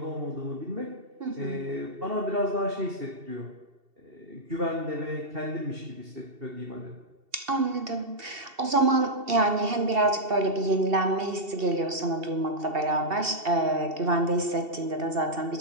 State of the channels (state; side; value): late; left; 2.7 ms